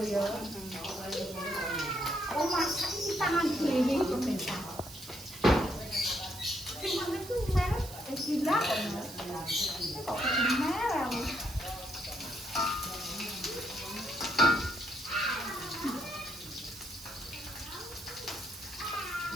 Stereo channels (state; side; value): noise; right; hiss, 14 dB below the sound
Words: Oh masak iki tangan dhewe pemirsa. Sing mana itu merek gila kok. Kok merek.